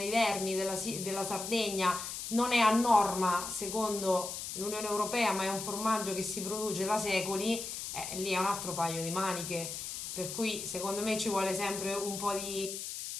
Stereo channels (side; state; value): left; noise; hiss, 6 dB below the sound